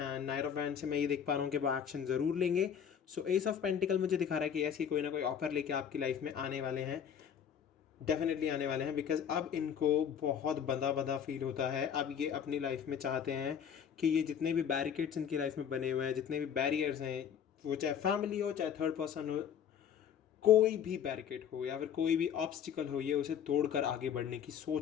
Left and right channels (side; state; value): right; quieter; 8.3 dB